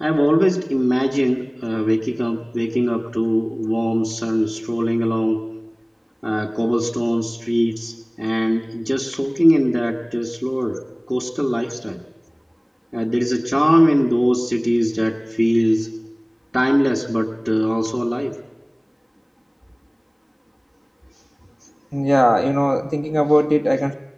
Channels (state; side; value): identical; both; correlation 1.00